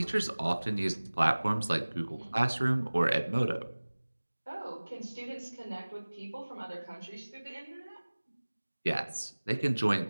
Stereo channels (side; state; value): both; inverted; correlation -1.00